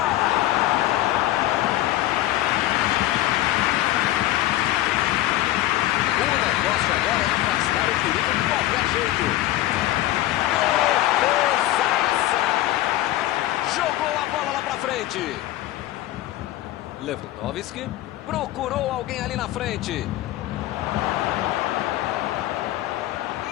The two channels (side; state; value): right; quieter; 15.2 dB